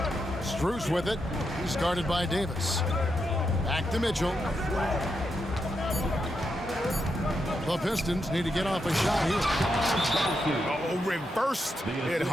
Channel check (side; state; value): both; normal; correlation 0.84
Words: Strus with it. He's guarded by Davis. Back to Mitchell. The Pistons need to get off a shot here. Oh, reversed it